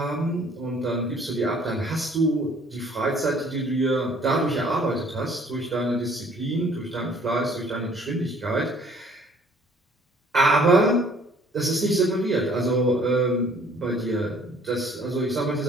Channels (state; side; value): normal; both; correlation 0.57